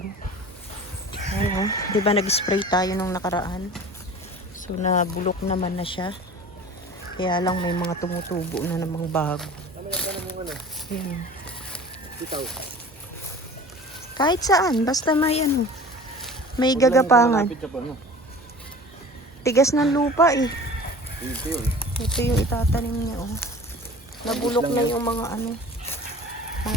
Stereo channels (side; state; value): both; normal; correlation 0.41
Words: Ayan oh. Diba nag-spray tayo nung nakaraan? So nabulok naman na siya. Kaya lang may mga tumutubo na namang bago. Ayan. Kahit saan, basta may ano, may gagapangan. Tigas ng lupa eh. Ito yung itatanim niya oh. Nabulok na yung mga ano,